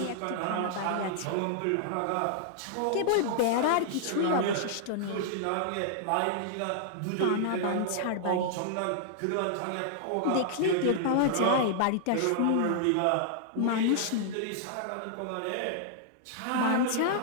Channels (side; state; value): both; different; correlation -0.01